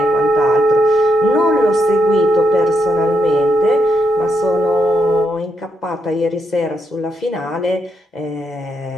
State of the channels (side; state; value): both; normal; correlation 0.80